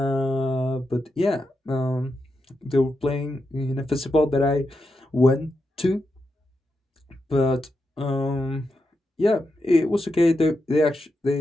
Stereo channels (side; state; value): both; normal; correlation 0.86